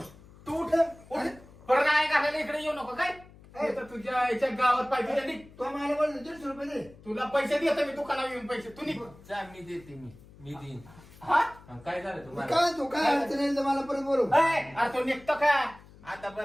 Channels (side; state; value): left; noise; hum, 22 dB below the sound